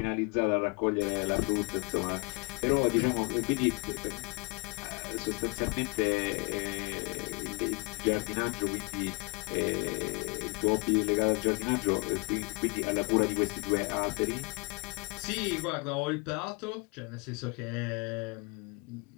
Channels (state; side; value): quieter; right; 29.9 dB